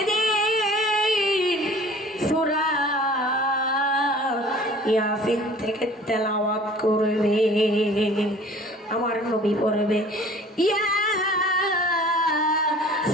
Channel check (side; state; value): both; normal; correlation 0.48